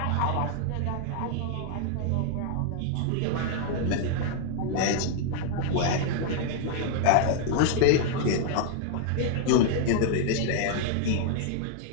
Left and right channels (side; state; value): both; different; correlation 0.00